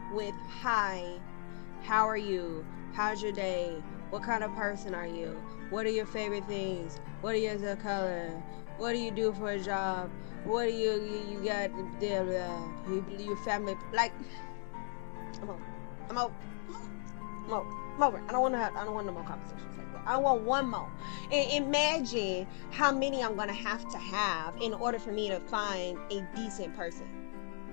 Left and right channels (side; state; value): right; silent; 54 dB below the other